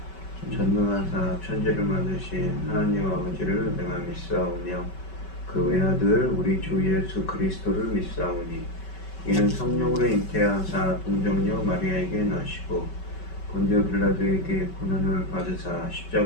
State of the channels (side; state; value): right; late; 5.3 ms